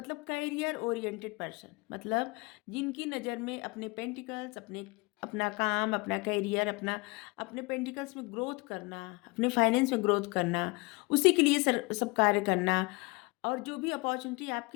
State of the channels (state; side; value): quieter; right; 26.2 dB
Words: कैरियर ओरिएंटेड पर्सन, मतलब जिनकी नज़र में अपने पेंटिकल्स, अपने अपना काम, अपना कैरियर, अपना अपने पेंटिकल्स में ग्रोथ करना, अपने फाइनेंस में ग्रोथ करना, उसी के लिए सब कार्य करना, और जो भी अपॉर्चुनिटी